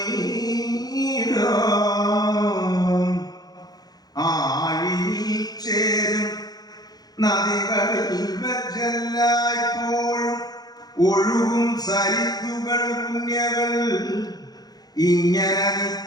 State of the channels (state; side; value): late; right; 0.19 ms